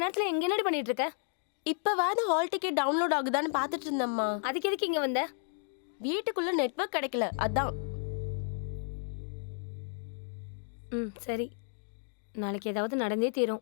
எங்க என்னடி பண்ணிட்டு இருக்க? இப்பவாது ஹால் டிக்கெட் டவுன்லோட் ஆகுதான்னு பார்த்துட்டு இருந்தம்மா. அதுக்கு எதுக்கு இங்க வந்த? வீட்டுக்குள்ள நெட்வொர்க் கிடைக்கல, அதான். சரி. நாளைக்கு ஏதாவது நடந்தே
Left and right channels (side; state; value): right; silent; digital silence